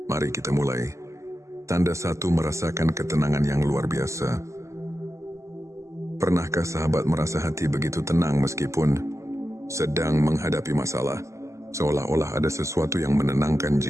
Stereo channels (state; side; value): late; left; 0.14 ms